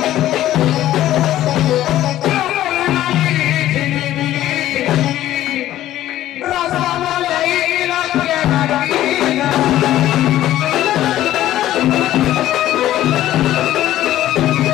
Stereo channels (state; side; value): quieter; right; 13.6 dB